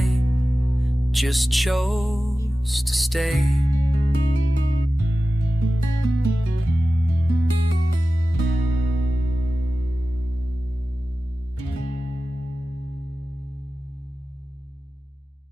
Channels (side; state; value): both; normal; correlation 0.95